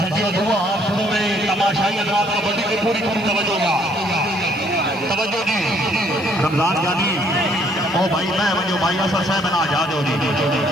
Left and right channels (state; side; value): noise; right; hiss, 28 dB below the sound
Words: दुआ आप शुरू में तमाशाई हजरात कबड्डी की पूरी तवज्जो का तवज्जो जी रमजान जानी ओ भाई मैं वजो भाई असर साहब ना आजाद हो जी